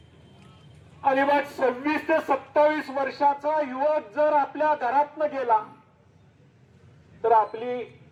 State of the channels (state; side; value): identical; both; correlation 1.00